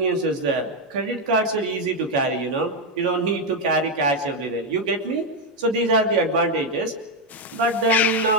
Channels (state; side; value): normal; both; correlation 0.04